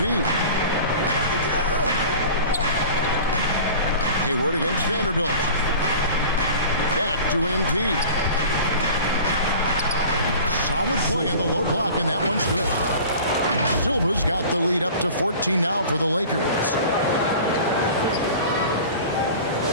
Hayward against Vanderbilt. Back to MP. Solid play in the low block, and that one's good. Silva's got the lead up to 14 now for the Lakers.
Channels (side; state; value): both; inverted; correlation -0.40